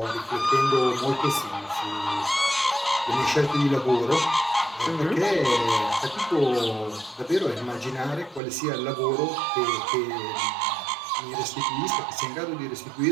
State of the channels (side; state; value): left; drops out; at 8.4 s